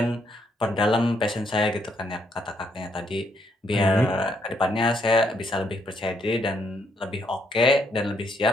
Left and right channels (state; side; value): normal; both; correlation 0.73